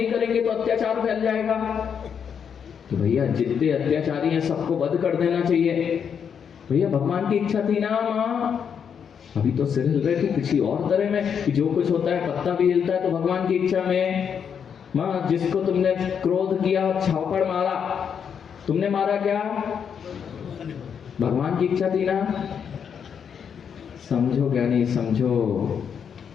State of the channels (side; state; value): right; quieter; 7.4 dB